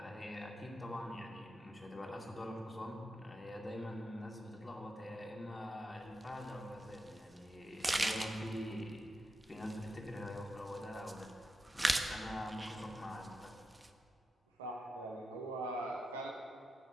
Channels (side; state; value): both; normal; correlation 0.89